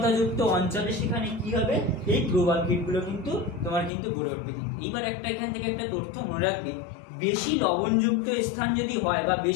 যুক্ত অঞ্চলে সেখানে কি হবে, এই প্রবাল কীটগুলো কিন্তু তোমার কিন্তু গড়ে উঠবে। এইবার একটা এখান থেকে একটা তথ্য মনে রাখবে, বেশি লবণযুক্ত স্থান যদি হয় বা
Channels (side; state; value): right; drops out; at 3.9 s